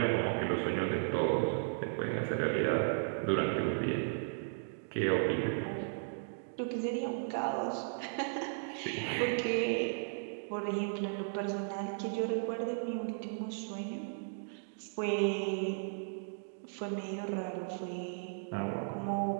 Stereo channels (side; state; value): left; silent; digital silence